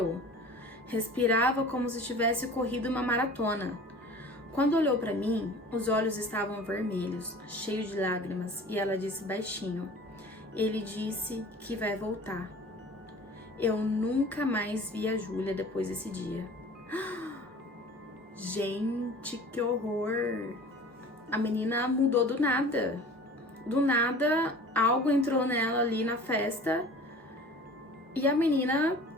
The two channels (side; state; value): both; normal; correlation 0.43